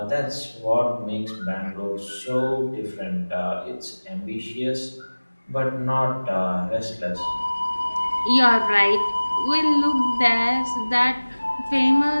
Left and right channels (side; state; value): both; inverted; correlation -1.00